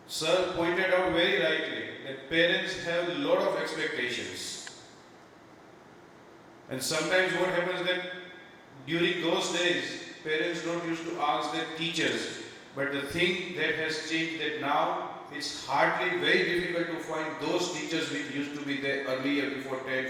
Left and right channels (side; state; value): both; identical; correlation 1.00